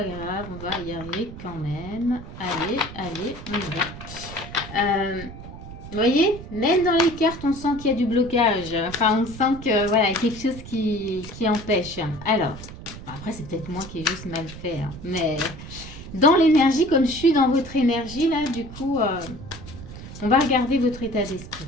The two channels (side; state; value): right; noise; rumble, 13 dB below the sound